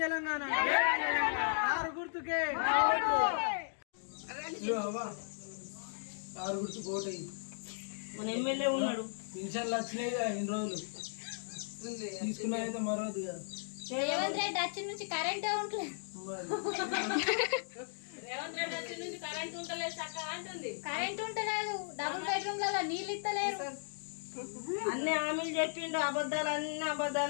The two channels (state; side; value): silent; right; digital silence